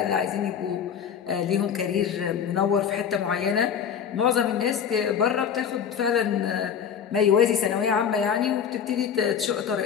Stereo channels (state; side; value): quieter; right; 7.8 dB